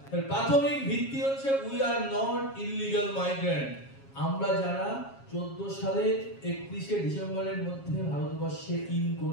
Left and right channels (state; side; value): late; right; 7.3 ms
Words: প্রাথমিক ভিত্তি হচ্ছে we are not illegal migrant. আমরা যারা 14 সালের 31 ডিসেম্বরের মধ্যে ভারতবর্ষে ইন